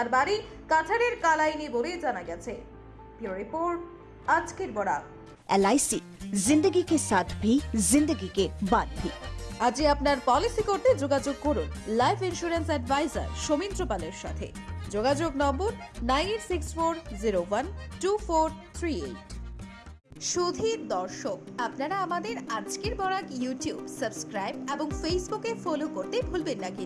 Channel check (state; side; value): identical; both; correlation 1.00